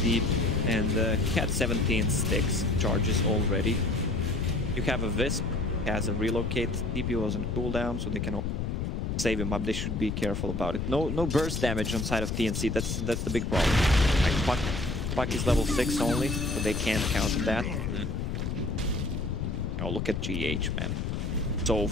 and he had 17 sticks charges already. You have a Wisp, has a Relocate, TP was on cooldown, so they can save him up. They should be careful about it. No burst damage on side of TNC. That's the big problem. Like, Puck is level 6 only, so they can't counter that. Oh, look at GH, man. So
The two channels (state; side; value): noise; left; rumble, 2 dB below the sound